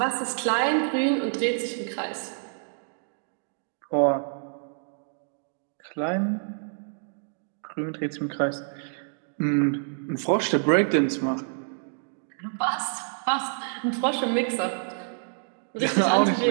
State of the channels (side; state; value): left; silent; digital silence